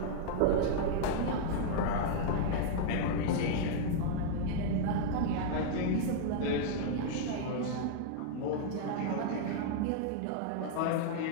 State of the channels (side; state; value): both; different; correlation -0.01